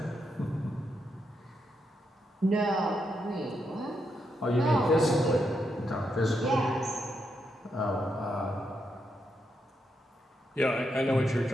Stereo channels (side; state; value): both; normal; correlation 0.81